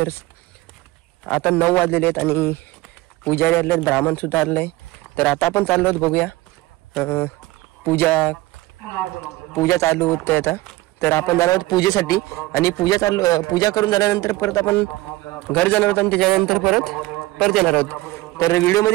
आता 9 वाजलेले आहेत आणि पुजारी आले आहेत, ब्राह्मण सुद्धा आले आहे. तर आता आपण चाललो आहोत, बघूया पूजा चालू होते आता. तर आपण जाणार आहोत पूजेसाठी आणि पूजा करून झाल्यानंतर परत आपण घर जाणार आहोत आणि त्याच्यानंतर परत येणार आहोत. तर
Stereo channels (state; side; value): quieter; left; 19.1 dB